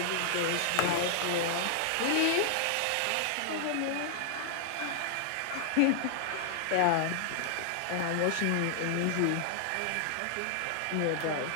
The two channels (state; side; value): different; both; correlation 0.00